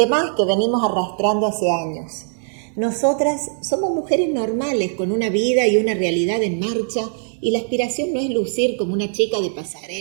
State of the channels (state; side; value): silent; left; digital silence